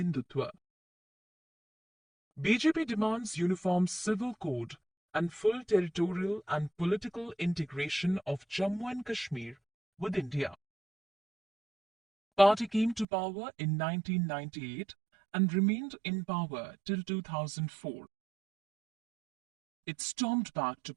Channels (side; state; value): left; drops out; at 13.1 s